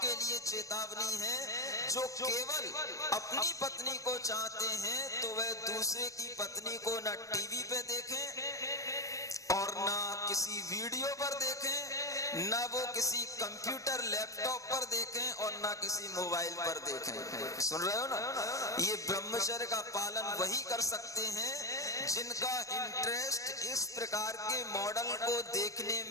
लिए चेतावनी है जो केवल अपनी पत्नी को चाहते हैं तो वह दूसरे की पत्नी को न टीवी पे देखें और ना किसी वीडियो पर देखें, ना वो किसी कंप्यूटर लैपटॉप पर देखें और ना किसी मोबाइल पर देखें। सुन रहे हो ना? ये ब्रह्मचर्य का पालन वही कर सकते हैं जिनका इंटरेस्ट इस प्रकार के मॉडल को देखने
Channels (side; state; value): right; late; 0.16 ms